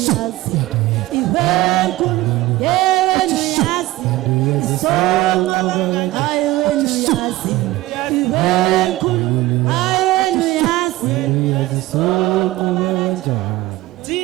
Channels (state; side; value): quieter; left; 17.7 dB